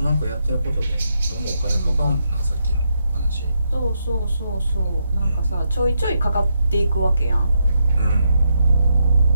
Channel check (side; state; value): both; inverted; correlation -0.80